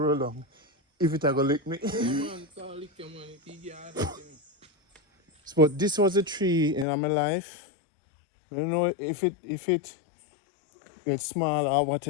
along, if it I go lick me. But this was a tree in my life. I don't know if it gets small or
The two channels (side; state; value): right; drops out; at 6.9 s